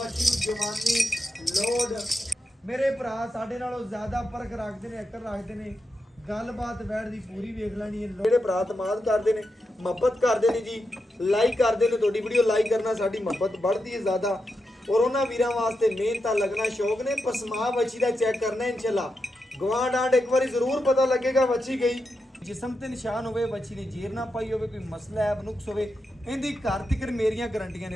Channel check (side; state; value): both; normal; correlation 0.86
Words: ਨੂੰ ਜਵਾਨੀ ਲੋਡ ਮੇਰੇ ਭਰਾ ਸਾਡੇ ਨਾਲੋਂ ਜ਼ਿਆਦਾ ਫਰਕ ਰੱਖਦੇ ਨੇ, ਐਕਟਰ ਰੱਖਦੇ ਨੇ। ਗੱਲਬਾਤ ਬੈਠ ਦੀ ਪੂਰੀ ਵੇਖ ਲੈਣੀ ਹੈ। ਜਿਹੜੇ ਭਰਾ ਤਮਾਦ ਕਰਦੇ ਨੇ, ਮੁਹੱਬਤ ਕਰਦੇ ਨੇ ਜੀ, ਲਾਈਕ ਕਰਦੇ ਨੇ, ਤੁਹਾਡੀ ਵੀਡੀਓ ਲਾਈਕ ਕਰਨਾ ਸਾਡੀ ਮੁਹੱਬਤ ਵੱਧਦੀ ਹੈ ਜ਼ਿਆਦਾ। ਔਰ ਉਹਨਾਂ ਵੀਰਾਂ ਵਾਸਤੇ ਮਿਹਨਤਾਂ ਲੱਗਣਾ ਸ਼ੌਕ ਨੇ। ਪਸਮਾ ਬੱਚੀ ਦਾ ਚੈੱਕ ਕਰਨਾ ਇਨਸ਼ਾਅੱਲਾ। ਗਵਾਂਢ ਆਂਡ ਇੱਕ ਵਾਰੀ ਜ਼ਰੂਰ ਪਤਾ ਲੱਗੇਗਾ ਬੱਚੀ ਗਈ। ਜਿਸਮ ਤੇ ਨਿਸ਼ਾਨ ਹੋਵੇ, ਬੱਚੀ ਨੇ ਜੇਰ ਨਾ ਪਾਈ ਹੋਵੇ, ਕੋਈ ਮਸਲਾ ਹੈ ਨੁਕਸ ਹੋਵੇ, ਇਹਦੀ ਘਰ ਤੱਕ ਮੇਰੀਆਂ ਗਰੰਟੀਆਂ ਨੇ